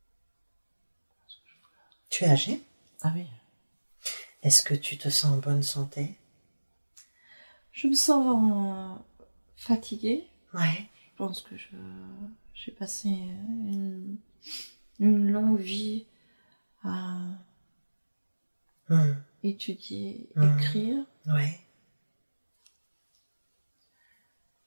Tu es âgé? Ah oui. Est-ce que tu te sens en bonne santé? Je me sens fatiguée. Ouais. Je pense que j'ai passé une longue vie à étudier, écrire. Ouais.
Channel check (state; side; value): inverted; both; correlation -1.00